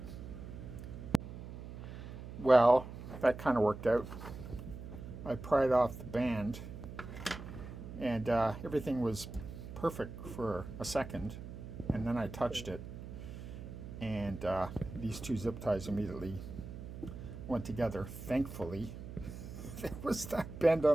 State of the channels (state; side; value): noise; right; hum, 10 dB below the sound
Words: Well, that kind of worked out. I pried off the band and everything was perfect for a second, and then I touched it and these two zip ties immediately went together. Thankfully, there was that bend